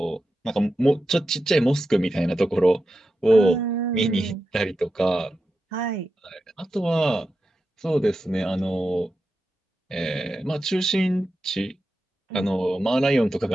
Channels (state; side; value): normal; both; correlation 0.90